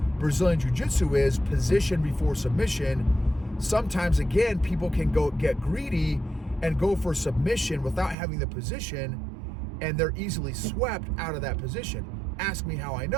Brazilian Jiu-Jitsu is position before submission. Sometimes, again, people can get greedy and go for submission without having the position, and they're easily swept out of that position. Ask me how I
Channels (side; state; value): left; drops out; at 8.2 s